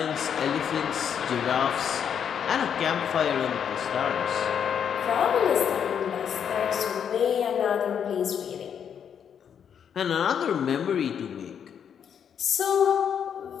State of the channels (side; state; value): right; quieter; 8.0 dB